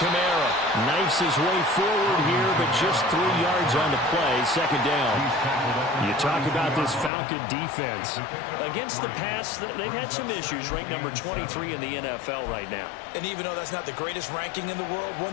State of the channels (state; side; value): drops out; right; at 7.1 s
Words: Knifes his way forward here, but just 3 yards on the play. Second down. You talk about this Falcon defense. Against the pass, they've had some issues. Ranked number 23 in the NFL right now. And even though that's not the greatest ranking in the world,